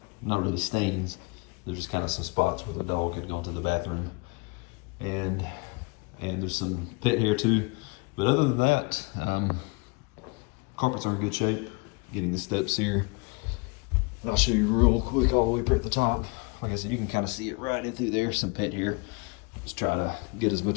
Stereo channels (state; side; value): quieter; right; 29.4 dB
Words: not really stains. They're just kind of some spots where the dog had gone to the bathroom. And there's some pet hair too. But other than that, carpets are in good shape. Getting the steps here. And I'll show you real quick all the way up at the top. Like I said, you can kind of see it right in through there, some pet hair. Just try to get as